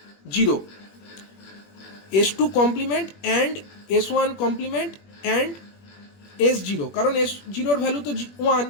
S2 complement and S1 complement and S0, কারণ S0 ভ্যালু তো 1,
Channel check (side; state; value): right; late; 21 ms